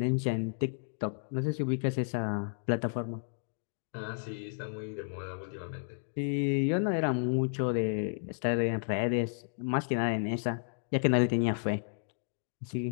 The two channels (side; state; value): right; silent; digital silence